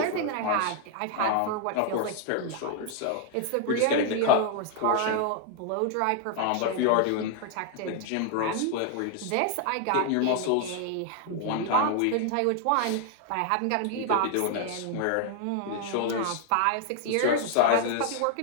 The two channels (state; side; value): different; both; correlation 0.00